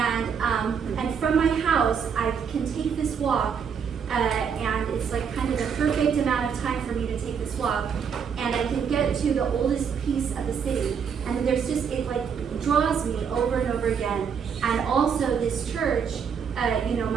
from my house, I can take this walk. And it's kind of the perfect amount of time for me to take this walk, and I can get to the oldest piece of the city, and there's just, it draws me over and over again. And also this church,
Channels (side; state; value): left; quieter; 6.9 dB